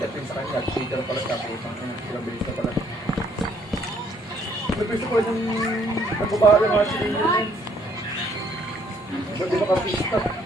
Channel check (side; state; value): both; normal; correlation 0.65